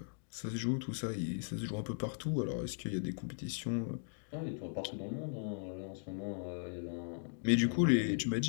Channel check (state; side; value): silent; right; digital silence